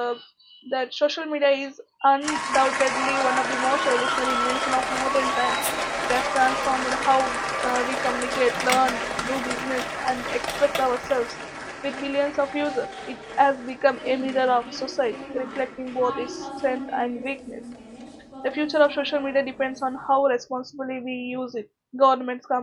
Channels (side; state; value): both; identical; correlation 1.00